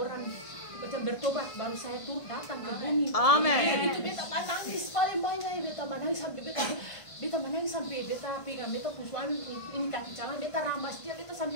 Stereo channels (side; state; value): right; late; 1.5 ms